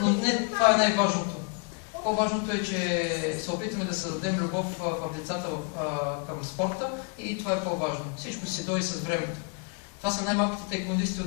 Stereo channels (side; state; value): right; quieter; 36.3 dB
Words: но не това е най-важното. По-важното е, че се опитваме да създадем любов в децата към спорта и това е по-важно. Всичко си дойде с времето. Това са най-малките таеквондисти